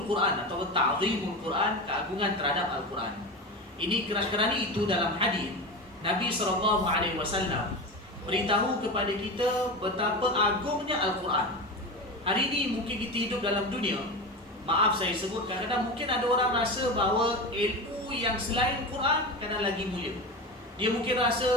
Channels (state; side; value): normal; both; correlation 0.24